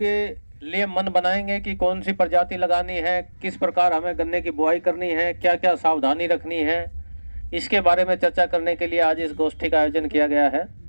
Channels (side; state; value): both; inverted; correlation -1.00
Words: लिए मन बनाएंगे कि कौन सी प्रजाति लगानी है, किस प्रकार हमें गन्ने की बुआई करनी है, क्या क्या सावधानी रखनी है, इसके बारे में चर्चा करने के लिए आज इस गोष्ठी का आयोजन किया गया है।